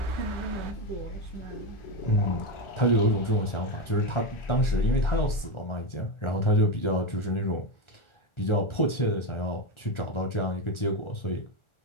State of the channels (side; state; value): right; late; 1.4 ms